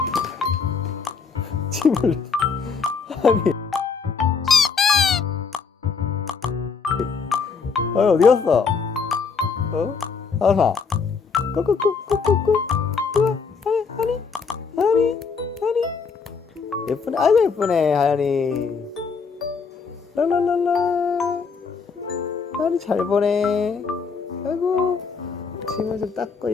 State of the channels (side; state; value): right; quieter; 5.3 dB